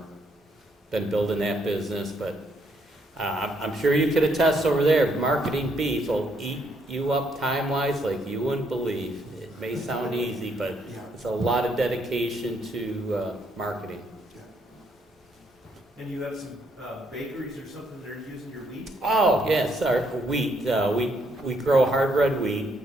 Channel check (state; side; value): normal; both; correlation 0.73